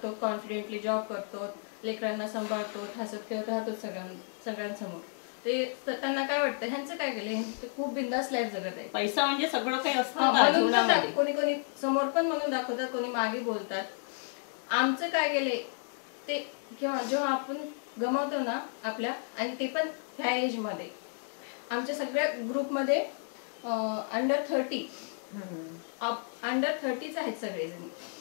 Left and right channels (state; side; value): silent; right; 56 dB below the other